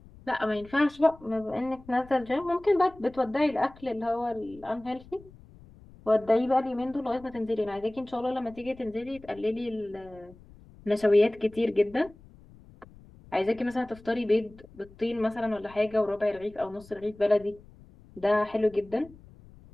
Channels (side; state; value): left; noise; rumble, 23 dB below the sound